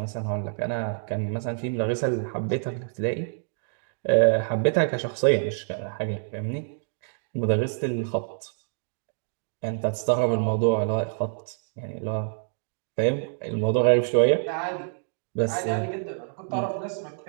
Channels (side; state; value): left; silent; digital silence